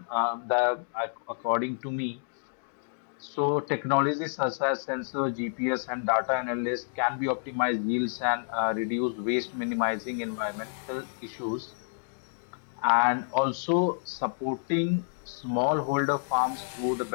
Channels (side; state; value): right; silent; digital silence